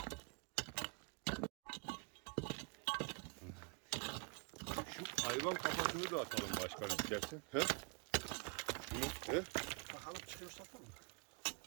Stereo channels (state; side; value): quieter; left; 34.5 dB